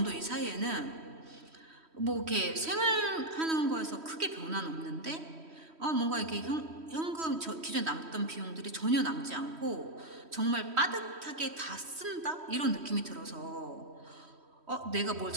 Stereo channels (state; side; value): late; left; 3.1 ms